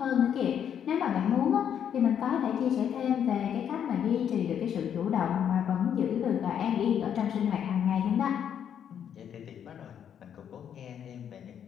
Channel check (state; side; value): quieter; right; 8.8 dB